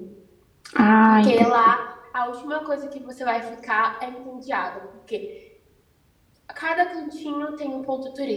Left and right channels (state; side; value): identical; both; correlation 1.00